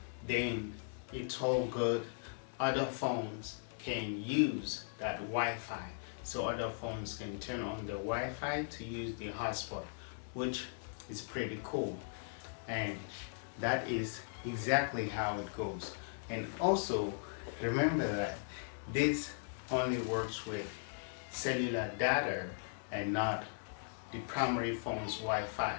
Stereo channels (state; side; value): silent; right; digital silence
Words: then it's all good. Other phones can use that Wi-Fi, so other phones can turn on the Wi-Fi to use the hotspot, which is pretty cool. And that is exactly how it goes. And also remember that this only works with cellular data and not the primary phone's